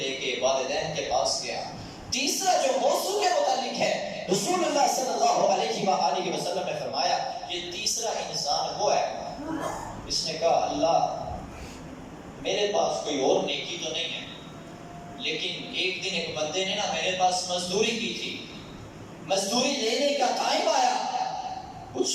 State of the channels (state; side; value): identical; both; correlation 1.00